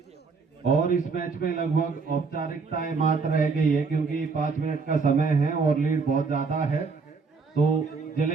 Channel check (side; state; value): left; quieter; 4.7 dB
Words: और इस मैच में लगभग औपचारिकताएं मात्र रह गई है क्योंकि 5 मिनट का समय है और लीड बहुत ज्यादा है। तो